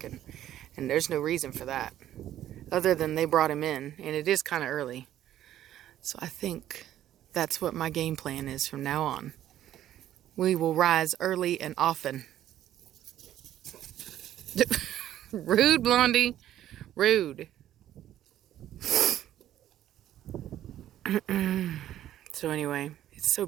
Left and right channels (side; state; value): left; quieter; 12.2 dB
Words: And there's no reason for that, other than they brought him in, and it is kind of early. So I think that's what my game plan is from now on. We will rise early and often. Rude, Blondie. Rude. So anyway, it's so